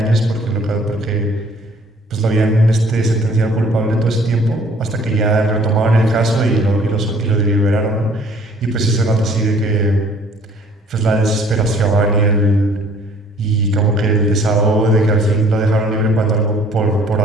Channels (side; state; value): both; normal; correlation 0.56